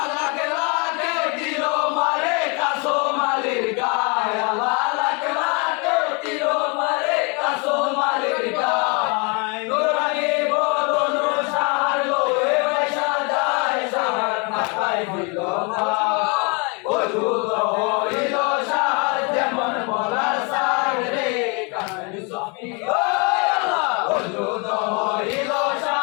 লাকে লাকে দিল মারে কাসো মালির গায় আল্লাহ লাকে লাকে দিল মারে কাসো মালির গায় নুরানি বদন শাহর লোয়ে পয়সা যায় শাহর মাথায় দিল ভাই ওজুদ হইল শাহর যেমন বলার সার রে কামনি সফি ওজুদ হইল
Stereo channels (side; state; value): right; quieter; 32.5 dB